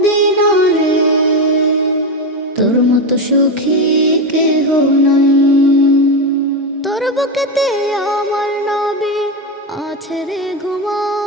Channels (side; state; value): both; normal; correlation 0.13